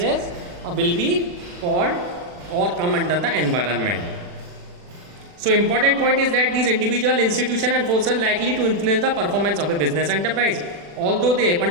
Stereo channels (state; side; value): late; left; 40 ms